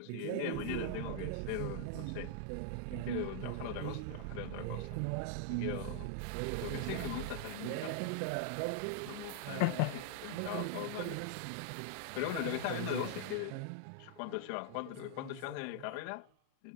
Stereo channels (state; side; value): different; both; correlation 0.00